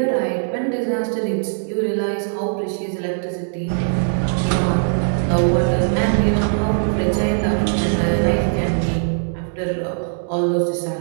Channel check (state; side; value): silent; left; digital silence